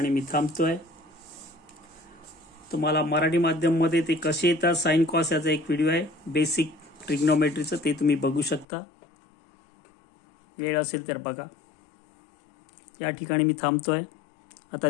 मी थांबतोय. तुम्हाला मराठी माध्यम मध्ये ते कसे येतात साइन कॉस याचा एक व्हिडिओ आहे बेसिक ट्रिग्नोमेट्रीचं, ते तुम्ही बघू शकता. वेळ असेल तर बघा. या ठिकाणी मी थांबतोय. आता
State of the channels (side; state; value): right; drops out; at 8.7 s